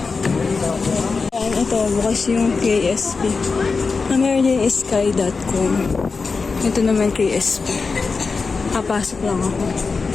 Ayan, ito. Bukas yung KSP. Meron din sky.com. Ito naman KSP. Kapasok lang ako.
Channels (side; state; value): right; quieter; 4.5 dB